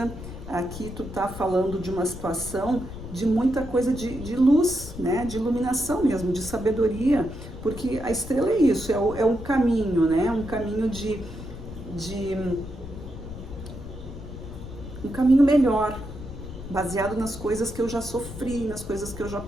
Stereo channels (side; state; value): left; noise; rumble, 11 dB below the sound